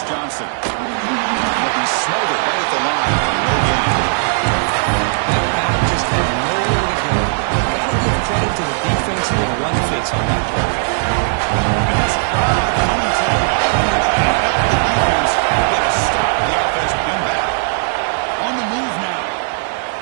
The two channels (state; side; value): silent; left; 68 dB below the other